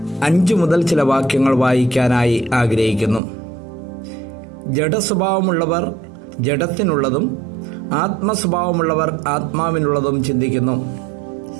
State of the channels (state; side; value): drops out; left; at 3.2 s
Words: 5 മുതൽ ചില വാക്യങ്ങൾ വായിക്കാനായി ആഗ്രഹിക്കുന്നു. ജഡസ്വഭാവമുള്ളവർ ജഡത്തിനുള്ളതും ആത്മസ്വഭാവമുള്ളവർ ആത്മാവിനുള്ളതും ചിന്തിക്കുന്നു.